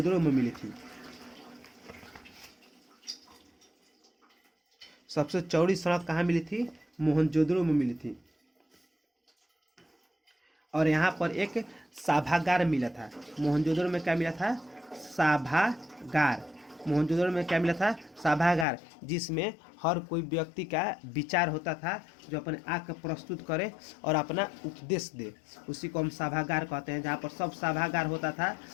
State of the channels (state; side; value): drops out; right; at 18.7 s